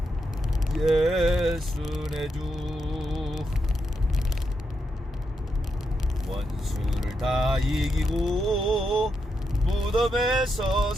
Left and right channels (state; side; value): normal; both; correlation 0.83